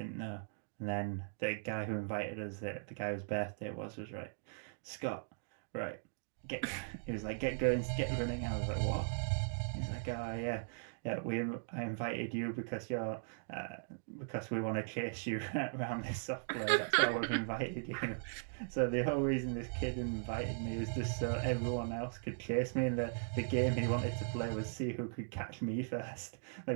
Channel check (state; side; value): silent; left; digital silence